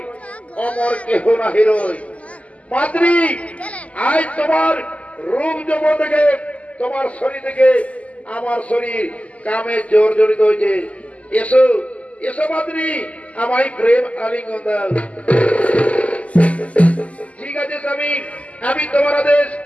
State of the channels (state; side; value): late; right; 0.068 ms